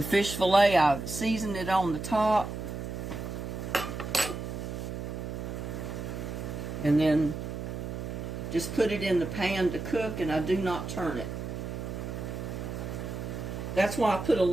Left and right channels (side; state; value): right; noise; hum, 6 dB below the sound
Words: fish fillet, I've seasoned it on the top. And then just put it in the pan to cook, and I do not turn it. That's why I put a